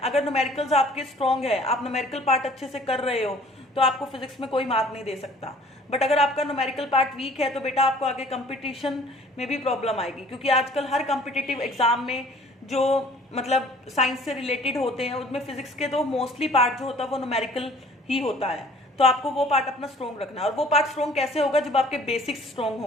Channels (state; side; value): normal; both; correlation 0.53